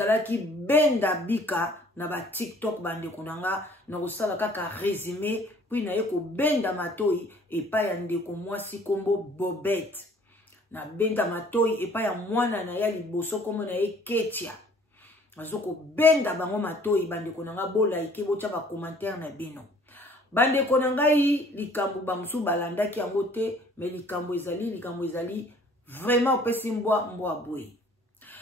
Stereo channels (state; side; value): normal; both; correlation 0.55